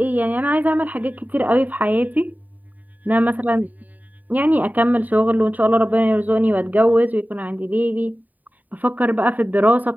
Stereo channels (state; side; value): late; left; 0.083 ms